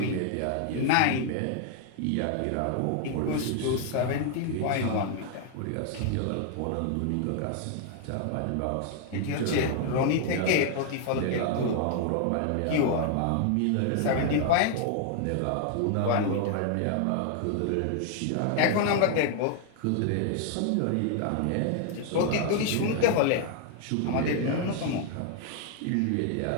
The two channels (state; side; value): different; both; correlation 0.00